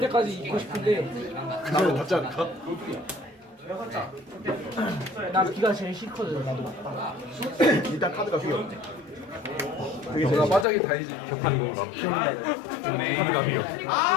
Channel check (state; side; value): drops out; right; at 10.7 s